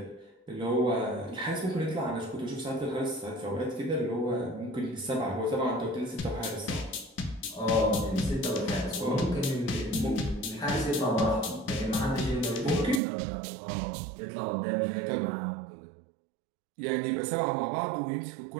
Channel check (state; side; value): drops out; left; at 13.0 s